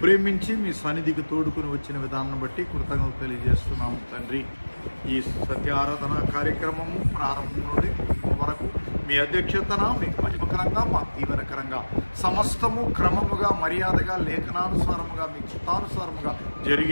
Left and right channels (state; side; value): inverted; both; correlation -1.00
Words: ప్రేమించి మీ సన్నిధికి తోడుకుని వచ్చిన విధానం బట్టి కృతజ్ఞతలు తెలియజేస్తున్నాము తండ్రి. ఈ సత్య ఆరాధన కార్యక్రమము ప్రారంభం నుండి వరకు మీ అధ్యక్షతన మీకు మహిమకరంగా, మాకు దీవెనకరంగా, సమస్తము క్రమముగా, మర్యాదగా, లేఖనానుసారముగా, మీ చిత్తానుసారముగా